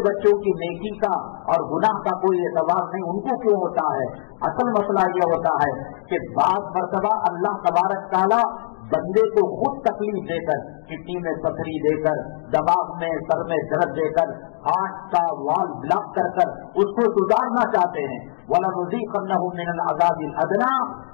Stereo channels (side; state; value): right; silent; digital silence